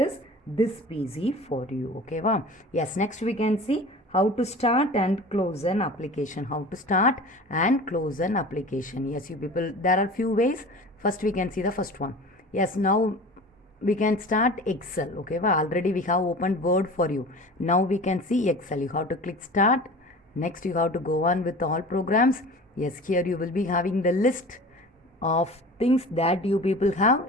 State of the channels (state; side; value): normal; both; correlation 0.38